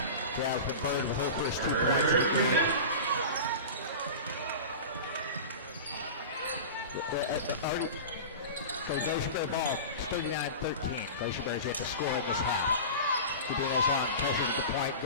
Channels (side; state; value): both; inverted; correlation -0.31